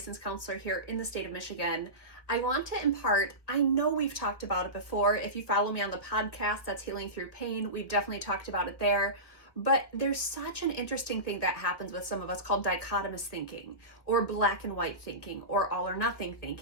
counselor here in the state of Michigan. I want to impart, I know we've talked about it before. If you follow me on the podcast, that's Healing Through Pain. We've definitely talked about it there. But there's such an interesting thing that happens with some of us called dichotomous thinking, or black and white thinking, or all or nothing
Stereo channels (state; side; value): late; right; 1.5 ms